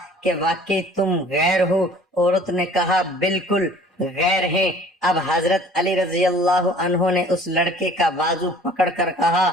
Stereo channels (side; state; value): both; normal; correlation 0.50